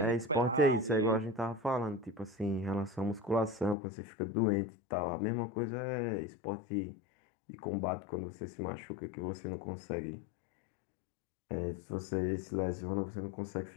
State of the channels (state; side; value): drops out; right; at 3.8 s